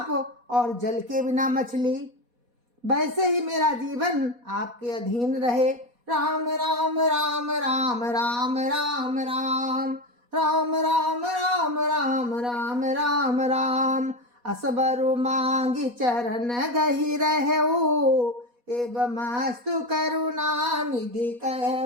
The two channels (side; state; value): left; late; 4.1 ms